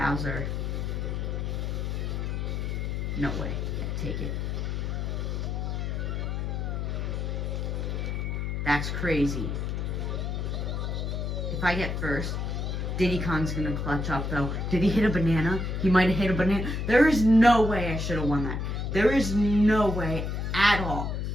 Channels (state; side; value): noise; left; hum, 2 dB below the sound